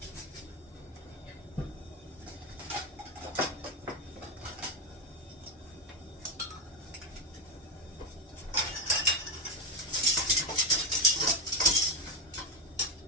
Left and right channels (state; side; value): normal; both; correlation 0.09